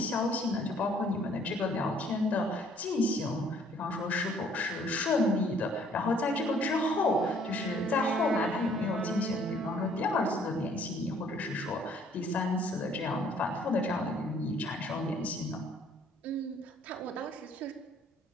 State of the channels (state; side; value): normal; both; correlation 0.60